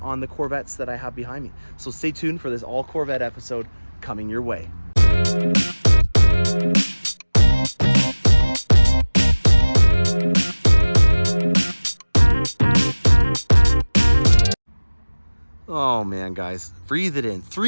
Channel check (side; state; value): both; inverted; correlation -1.00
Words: the Corvettes that I have behind me. So stay tuned for this all Corvette episode coming your way. Oh man, guys, breathe it in.